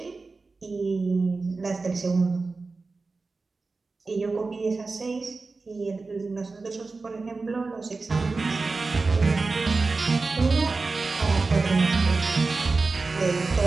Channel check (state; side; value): quieter; left; 3.9 dB